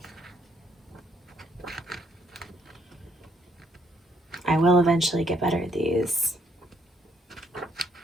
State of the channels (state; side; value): normal; both; correlation 0.70